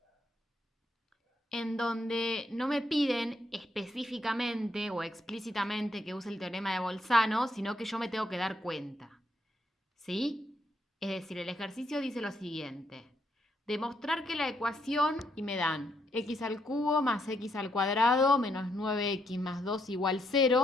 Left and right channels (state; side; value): normal; both; correlation 0.76